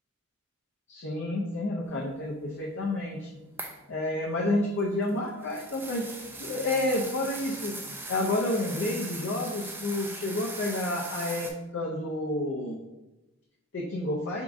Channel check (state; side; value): normal; both; correlation 0.34